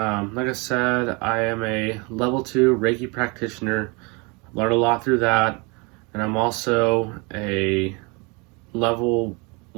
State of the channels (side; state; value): left; quieter; 29.5 dB